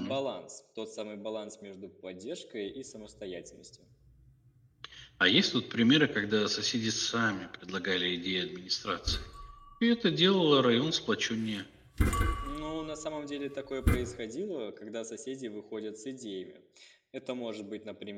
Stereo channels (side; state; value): both; identical; correlation 1.00